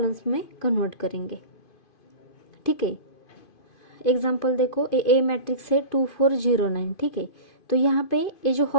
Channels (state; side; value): late; right; 2.5 ms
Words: में कन्वर्ट करेंगे। ठीक है। एग्जाम्पल देखो, ए मैट्रिक्स है 2 4 0 9। ठीक है। तो यहाँ पे ये जो